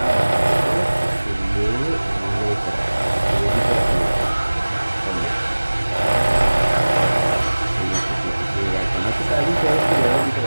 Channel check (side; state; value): both; inverted; correlation -1.00